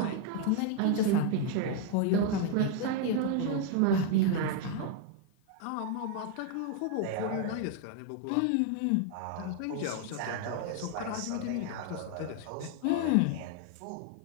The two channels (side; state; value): both; different; correlation 0.01